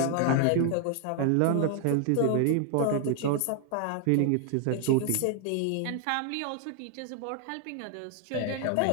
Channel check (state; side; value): different; both; correlation 0.00